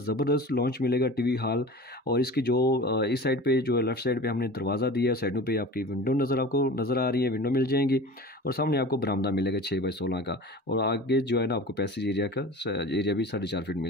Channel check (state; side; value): normal; both; correlation 0.37